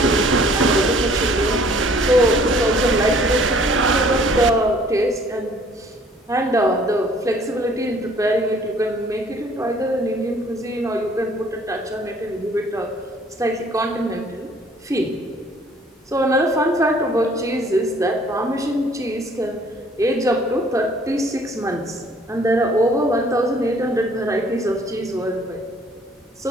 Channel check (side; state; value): both; normal; correlation 0.57